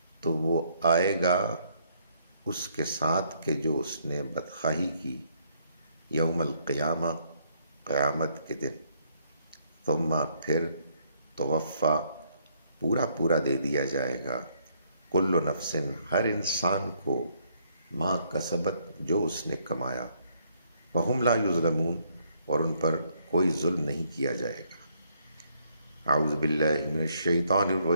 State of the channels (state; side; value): inverted; both; correlation -0.69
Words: تو وہ آئے گا اس کے ساتھ کہ جو اس نے بدخواہی کی، یوم القیامہ قیامت کے دن، ثم پھر توفیٰ پورا پورا دے دیا جائے گا، کل نفس ہر انسان کو، ما کسبت جو اس نے کمایا، وہم لا یظلمون اور ان پر کوئی ظلم نہیں کیا جائے گا۔ اعوذ باللہ من الشیطان